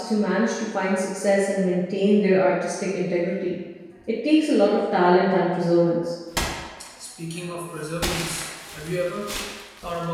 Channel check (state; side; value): identical; both; correlation 1.00